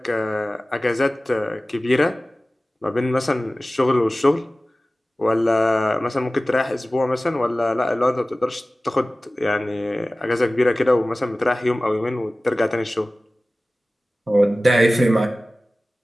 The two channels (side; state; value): both; normal; correlation 0.97